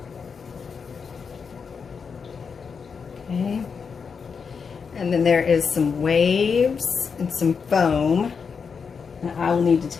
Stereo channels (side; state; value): right; quieter; 5.8 dB